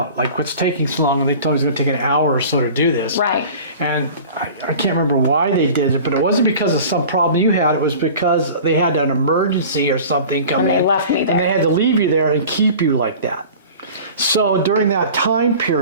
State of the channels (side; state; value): both; inverted; correlation -0.41